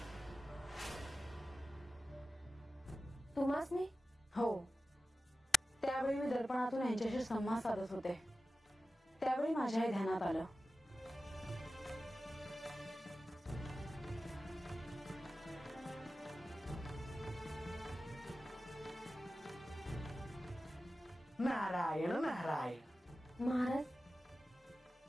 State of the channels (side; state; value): both; normal; correlation 0.95